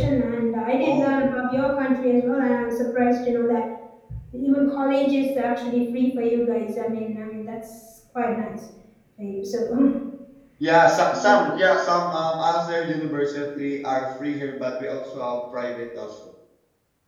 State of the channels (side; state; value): both; identical; correlation 1.00